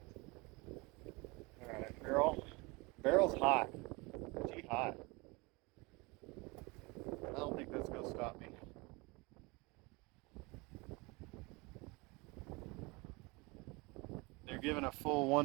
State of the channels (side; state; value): left; quieter; 26.0 dB